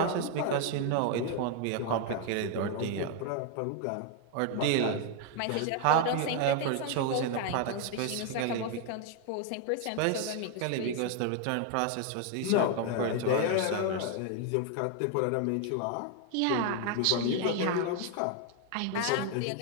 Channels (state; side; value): different; both; correlation 0.01